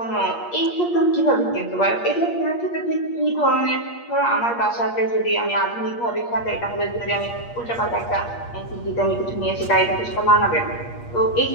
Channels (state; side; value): late; right; 8.5 ms